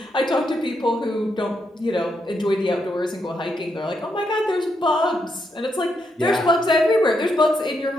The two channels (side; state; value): both; normal; correlation 0.80